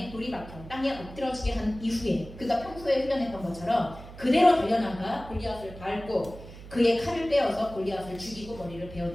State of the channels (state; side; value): noise; right; hum, 15 dB below the sound